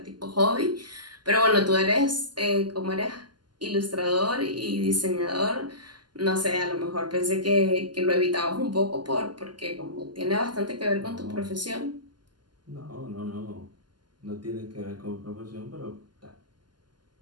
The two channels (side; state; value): left; late; 0.71 ms